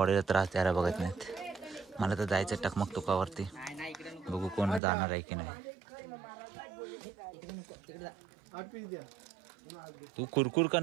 त्रास द्यायला बघत नाहीत. मला तर जायचं टकमकटोकावरती. बघू कोण जाणार आहे की नाही. तू कुरकुर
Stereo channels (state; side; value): drops out; left; at 4.8 s